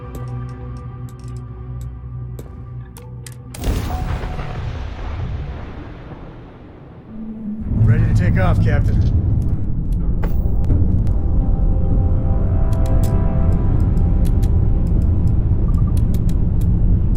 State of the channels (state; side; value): identical; both; correlation 1.00